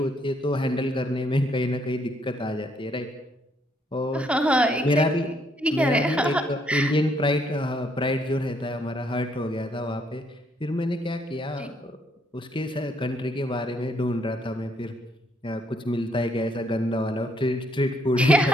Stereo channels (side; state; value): both; normal; correlation 0.71